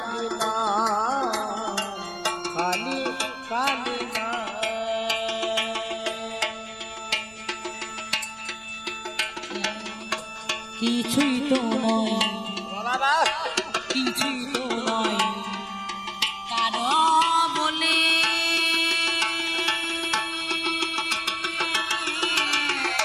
না কালি কালি না কিছুই তো নয়, বাবা কিছুই তো নয় কারো বলে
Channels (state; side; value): noise; left; rumble, 27 dB below the sound